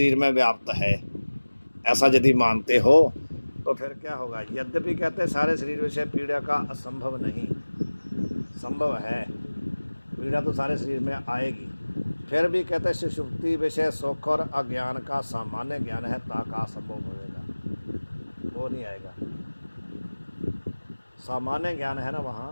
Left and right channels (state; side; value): inverted; both; correlation -1.00